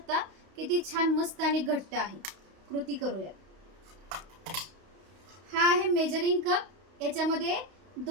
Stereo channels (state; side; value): late; left; 32 ms